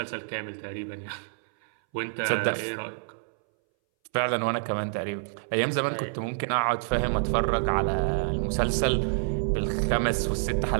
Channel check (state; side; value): silent; left; 60 dB below the other